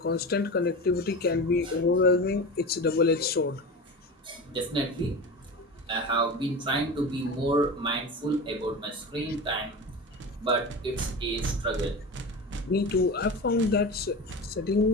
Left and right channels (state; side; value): normal; both; correlation 0.28